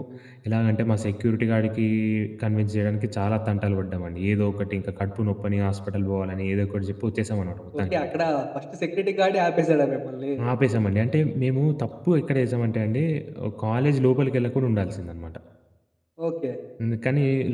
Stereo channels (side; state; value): both; identical; correlation 1.00